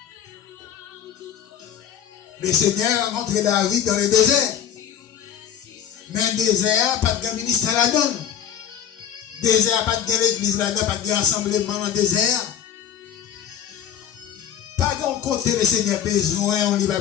le Seigneur a rencontré David dans le désert. Mais le désert, pas de ministère là-dedans. Désert, pas de l'église là-dedans, pas de rassemblement dans le désert. Pas de côté le Seigneur besoin, on lui va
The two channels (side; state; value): right; quieter; 9.2 dB